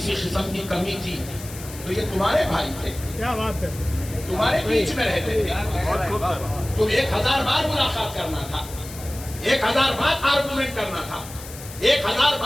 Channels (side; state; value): left; noise; hiss, 15 dB below the sound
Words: قسم کی کمی تھی تو یہ تمہارے بھائی تھے, کیا بات ہے, تمہارے بیچ میں رہتے تھے. تم 1000 بار ملاقات کرنا تھا, 1000 بار آرگومنٹ کرنا تھا, 1000